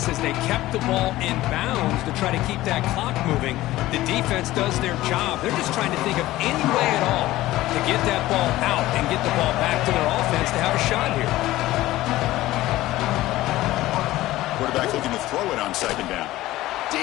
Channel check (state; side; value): quieter; right; 16.5 dB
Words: is they kept the ball in bounds to try to keep that clock moving. The defense does their job. They're just trying to think of any way at all to get that ball out and get the ball back to their offense to have a shot here. Quarterback looking to throw it on 2nd down.